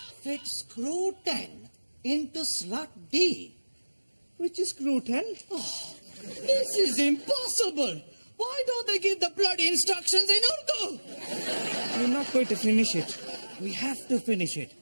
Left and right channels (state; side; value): inverted; both; correlation -1.00